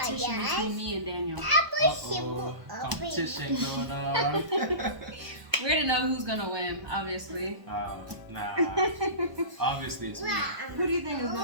between me and Daniel. Competition going on. We already know who's gonna win, obviously. Nah. Obviously it's me. Who do you think is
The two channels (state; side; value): late; left; 1.0 ms